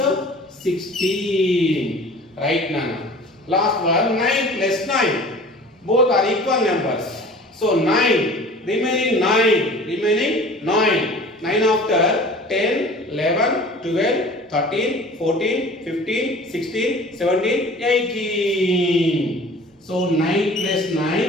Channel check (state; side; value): normal; both; correlation 0.44